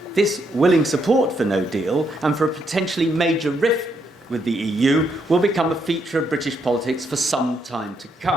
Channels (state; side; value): normal; both; correlation 0.76